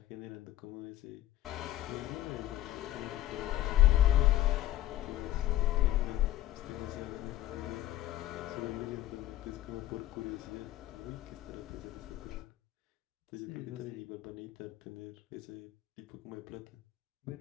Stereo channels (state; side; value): quieter; right; 14.3 dB